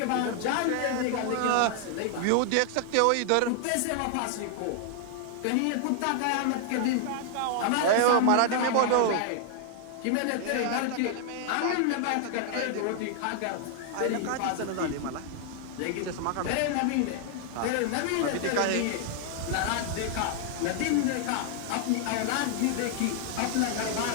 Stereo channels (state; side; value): different; both; correlation 0.00